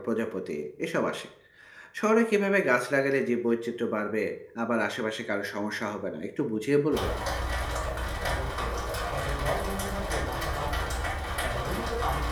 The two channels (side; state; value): both; identical; correlation 1.00